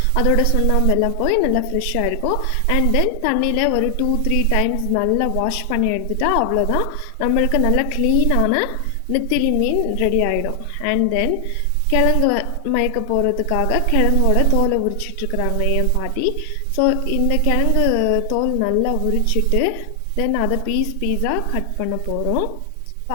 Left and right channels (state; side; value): different; both; correlation 0.00